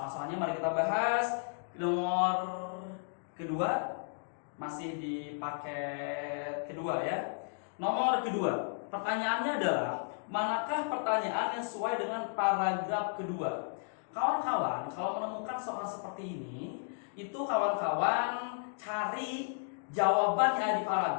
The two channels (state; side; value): silent; right; digital silence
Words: mari kita bahas nomor kedua, masih di paket kedua ya. Nomor kedua, pertanyaannya adalah manakah pertanyaan yang sesuai dengan paragraf kedua? Kawan-kawan, kalau menemukan soal seperti ini, itu kawan-kawan cari jawaban yang ada di